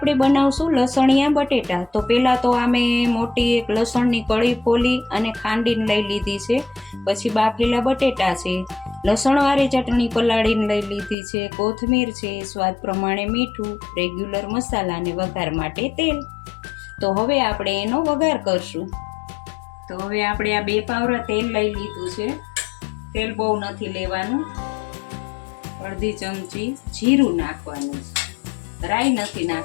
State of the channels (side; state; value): right; drops out; at 11.2 s